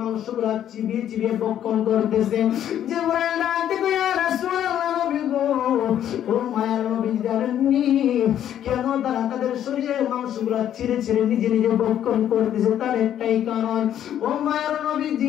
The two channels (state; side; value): quieter; right; 10.6 dB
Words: চিবিয়ে চিবিয়ে ভক্ষণ করতেছে? জিবরাইল ডাক দেবো, ইয়া রাসূলুল্লাহ নবী গো, ও মায়ার নবী জানেননি কেন তারা তাদের শরীরের মাংসগুলা ছিঁড়ে ছিঁড়ে নিজে নিজে ভক্ষণ করতেছে? তার একটাই কারণ, ও মায়ার